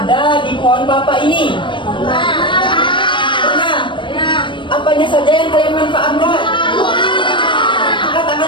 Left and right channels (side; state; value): right; late; 0.24 ms